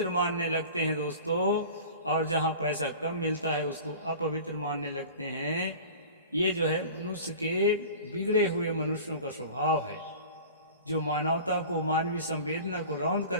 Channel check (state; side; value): inverted; both; correlation -0.39